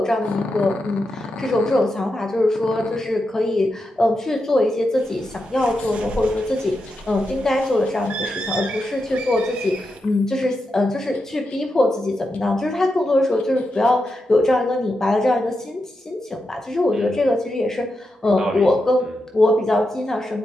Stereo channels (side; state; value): both; normal; correlation 0.87